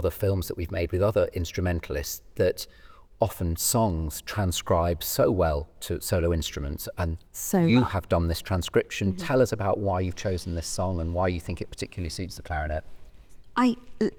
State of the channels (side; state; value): both; identical; correlation 1.00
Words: films that we've made with other instrumentalists that often songs transcribe so well to solo instruments, and you have done this transcription. Tell us about why you've chosen this song and why you think it particularly suits the clarinet. I